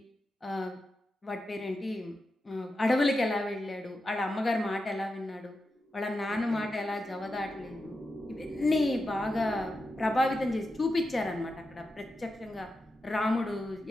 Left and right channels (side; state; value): both; normal; correlation 0.89